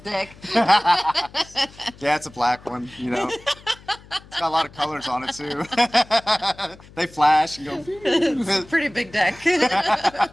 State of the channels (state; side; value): noise; left; hum, 22 dB below the sound